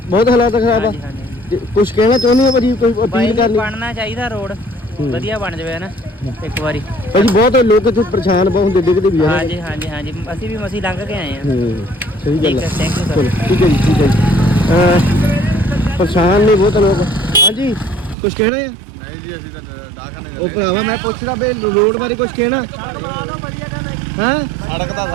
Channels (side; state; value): left; drops out; at 18.2 s